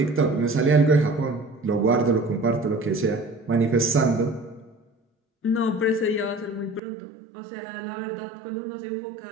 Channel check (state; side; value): drops out; left; at 6.8 s